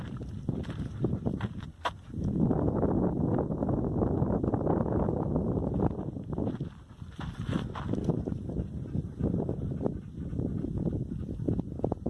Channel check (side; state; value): both; identical; correlation 1.00